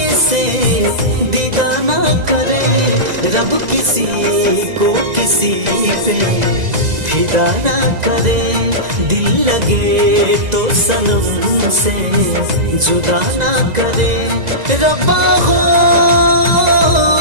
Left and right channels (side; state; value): left; late; 2.0 ms